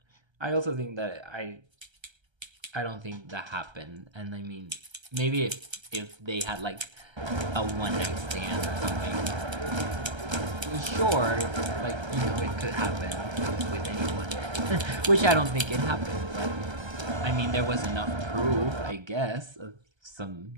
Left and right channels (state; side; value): late; left; 1.3 ms